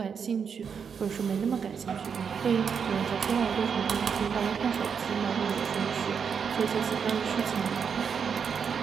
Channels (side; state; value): left; quieter; 6.6 dB